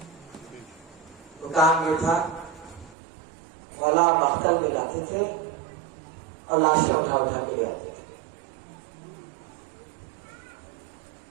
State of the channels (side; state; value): left; drops out; at 3.0 s